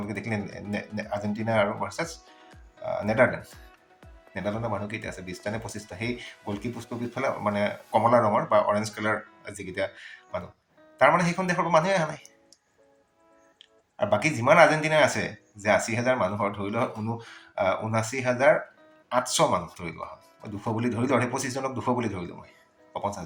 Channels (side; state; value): both; identical; correlation 1.00